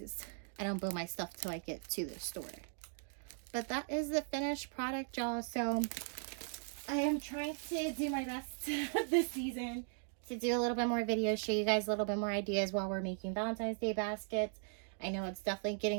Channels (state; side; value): silent; left; 52 dB below the other